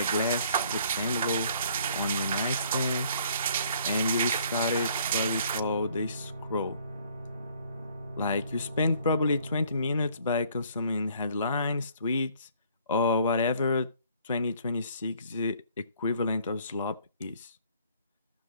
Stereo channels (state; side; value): inverted; both; correlation -0.60